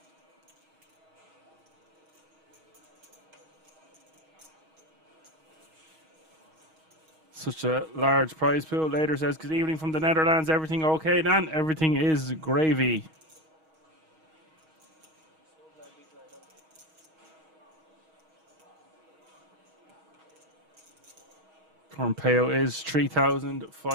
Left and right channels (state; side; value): late; left; 6.3 ms